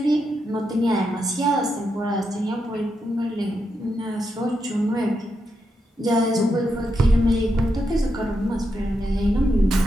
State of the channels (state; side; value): normal; both; correlation 0.83